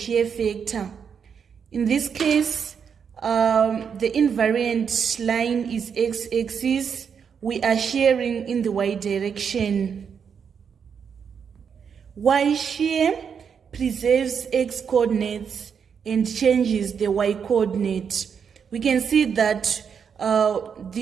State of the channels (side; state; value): left; quieter; 6.9 dB